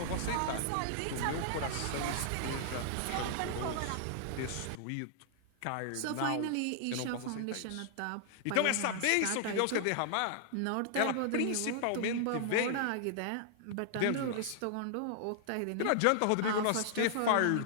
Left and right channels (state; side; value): different; both; correlation -0.01